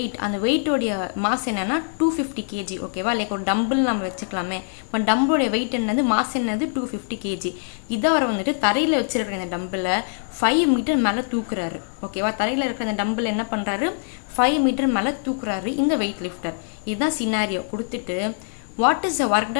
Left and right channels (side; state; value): right; silent; 63 dB below the other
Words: அந்த வெயிட்டோடைய மாஸ் என்னென்னா 250 kg. ஓகேவா, லைக் ஒரு டம்பிள் நம்ம வச்சுக்கலாமே. இப்போ டம்பிளோடைய வெயிட் என்னது, மாஸ் என்னது 250 kg. இதை அவர் வந்துட்டு தரையில் வச்சுருக்கிற இந்த டம்பிளை 5 மீட்டர் மேலே தூக்குறாரு. ஓகேவா, தரையில் இருக்கிற அந்த டம்பிள் என்ன பண்ணுறாரு, 5 மீட்டர் மேலே தூக்குறாரு இந்த வெயிட் லிஃப்டர். இதுதான் சினாரியோ கொடுத்துட்டு, what is the work